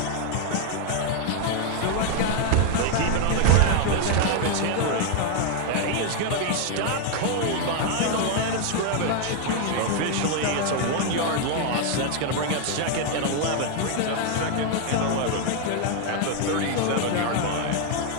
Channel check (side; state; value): both; different; correlation 0.00